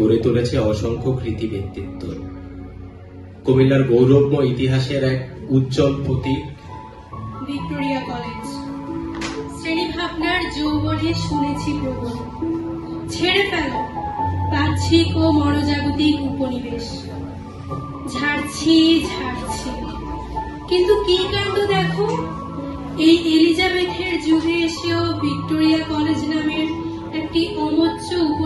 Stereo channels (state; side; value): identical; both; correlation 1.00